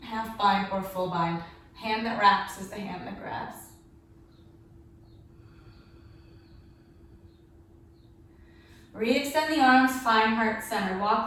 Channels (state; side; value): identical; both; correlation 1.00